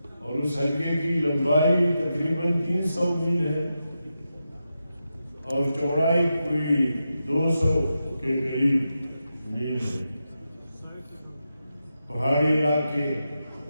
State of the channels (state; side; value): inverted; both; correlation -0.89